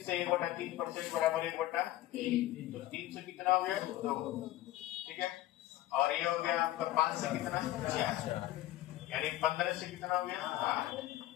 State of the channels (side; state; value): right; quieter; 15.4 dB